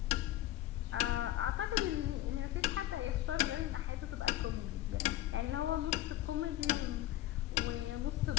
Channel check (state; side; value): quieter; right; 14.7 dB